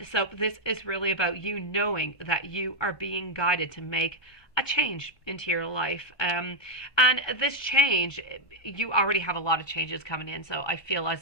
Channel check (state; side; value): late; right; 1.1 ms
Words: So this is really about you knowing that you are being guided to make a change into your life. And this change, you already have a lot of changes coming in. So I feel as